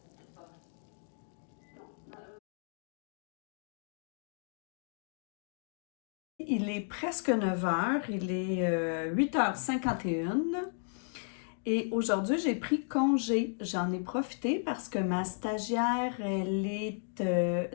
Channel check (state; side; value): silent; right; digital silence